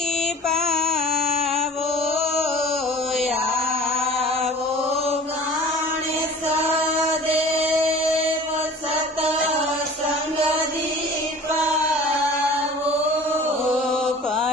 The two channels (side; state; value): both; normal; correlation 0.43